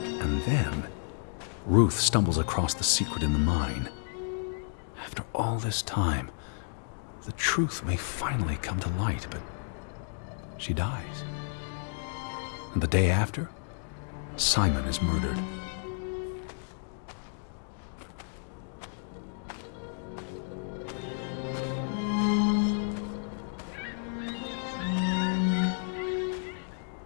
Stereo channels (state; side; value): silent; right; digital silence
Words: And then, Ruth stumbles across the secret in the mine. After all this time, the truth may finally come to light, but she dies. And the day after, Simon is murdered.